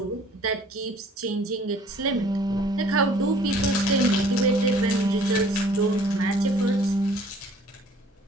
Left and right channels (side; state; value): both; normal; correlation 0.54